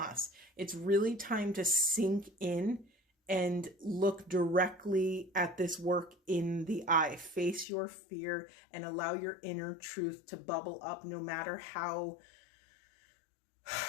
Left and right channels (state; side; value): drops out; right; at 7.7 s